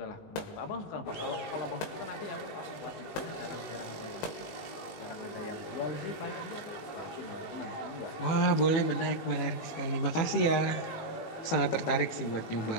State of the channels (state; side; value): late; right; 18 ms